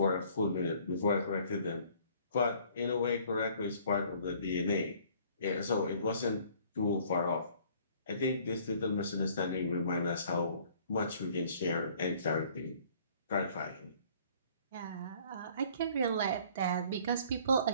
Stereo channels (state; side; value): inverted; both; correlation -0.56